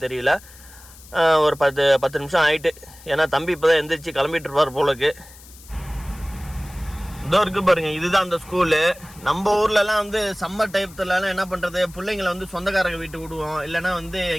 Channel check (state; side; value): noise; left; hiss, 21 dB below the sound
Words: தெரியல. ஒரு 10 நிமிஷம் ஆகிட்டு. ஏன்னா தம்பி இப்போ தான் எந்திரிச்சு கிளம்பிட்டு இருப்பார் போலக்கு. இதோ இருக்கு பாருங்க, இதுதான் அந்த ஸ்கூலு. நம்ம ஊர்லலாம் வந்து சம்மர் டைத்துலலாம் என்ன பண்ணுறது, பிள்ளைங்களை வந்து சொந்தக்காரங்க வீட்டுக்கு விடுவோம், இல்லைனா வந்து